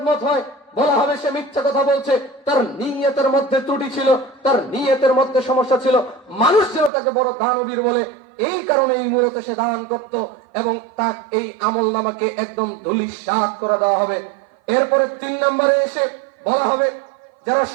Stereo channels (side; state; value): left; drops out; at 6.9 s